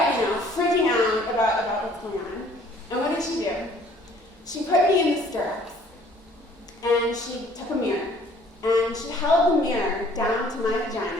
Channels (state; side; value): normal; both; correlation 0.56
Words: freaking out about what's going on. And what did she do? She put me in the stirrups, and she took a mirror, and she held the mirror down to my